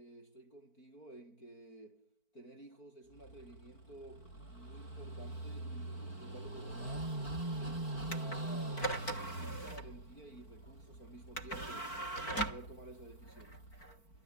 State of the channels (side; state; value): right; late; 4.5 ms